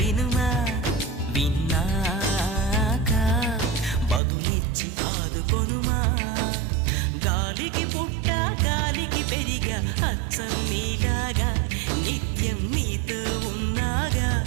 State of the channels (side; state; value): left; drops out; at 4.2 s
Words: విన్నాక బదులిచ్చి ఆదుకొనుమా. గాలికి పుట్ట గాలికి పెరిగా అచ్చం నీలాగా, నిత్యం నీతో ఉన్నాగా,